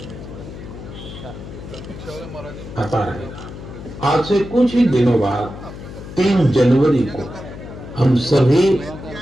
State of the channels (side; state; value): left; noise; hum, 12 dB below the sound